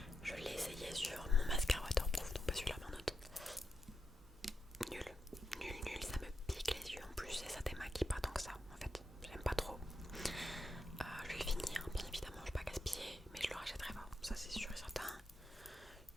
Je l'ai essayé sur mon mascara waterproof, donc pas celui-là mais un autre. Nul, nul, ça me pique les yeux en plus et ça démaquille pas tant que ça en fait. J'aime pas trop. Je vais le finir, bien évidemment, je vais pas gaspiller, mais je le rachèterai pas. Ça c'est sûr et certain.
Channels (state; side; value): normal; both; correlation 0.85